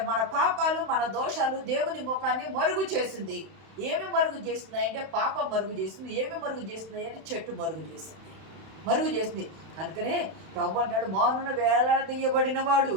మన పాపాలు, మన దోషాలు దేవుని ముఖాన్ని మరుగు చేసింది. ఏమి మరుగు చేస్తుంది అంటే పాపం మరుగు చేసింది. ఏమి మరుగు చేస్తుంది అంటే చెట్టు మరుగు చేసింది. కనుకనే ప్రభు అంటాడు, మౌనున వేలాడదీయబడిన వాడు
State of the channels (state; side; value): late; left; 31 ms